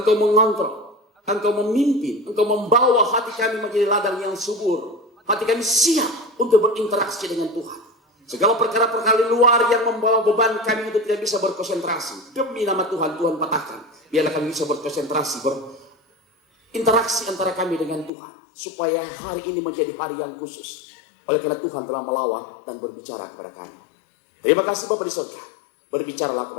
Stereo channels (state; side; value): drops out; right; at 18.1 s